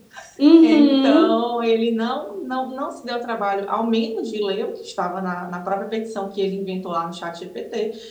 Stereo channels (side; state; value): both; identical; correlation 1.00